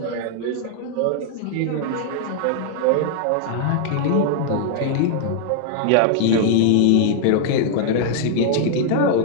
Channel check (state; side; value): different; both; correlation 0.00